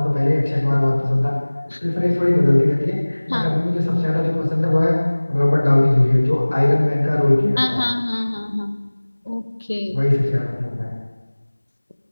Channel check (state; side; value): inverted; both; correlation -1.00